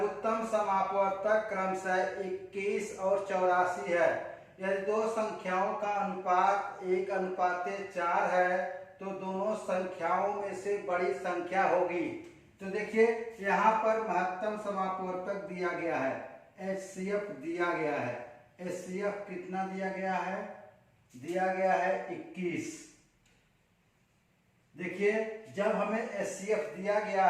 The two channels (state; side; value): identical; both; correlation 1.00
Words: समापवर्तक क्रमशः 21 और 84 है। यदि दो संख्याओं का अनुपात 1:4 है तो दोनों संख्याओं में से बड़ी संख्या होगी। तो देखिए यहाँ पर महत्तम समापवर्तक दिया गया है, एचसीएफ दिया गया है। एचसीएफ कितना दिया गया है, दिया गया है 21। देखिए जब हमें एचसीएफ दिया गया